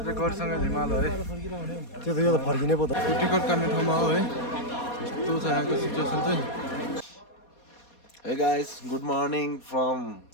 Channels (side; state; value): right; late; 4.2 ms